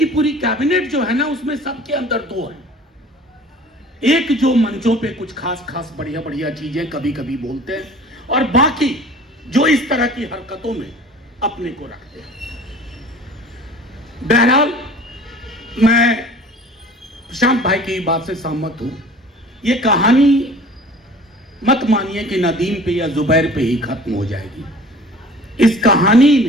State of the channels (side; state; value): both; normal; correlation 0.46